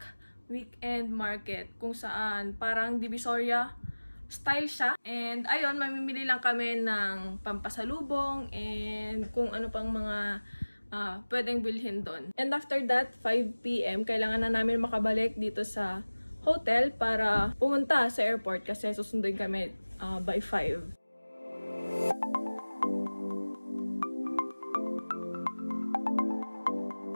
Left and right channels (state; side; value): inverted; both; correlation -1.00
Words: Weekend Market kung saan parang Divisoria style siya. And ayun, mamimili lang kami ng pampasalubong and kung ano pang mga pwedeng bilhin doon. And after that, 5 PM, kailangan na namin makabalik dito sa hotel para pumunta sa airport kasi susunduin kami by 5.